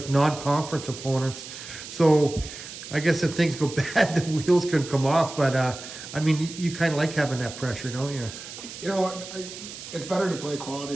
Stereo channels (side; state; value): right; noise; hiss, 12 dB below the sound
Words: non-conference opponents. So I guess if things go bad, the wheels can come off. But you kind of like having that pressure, don't you? It's better to play quality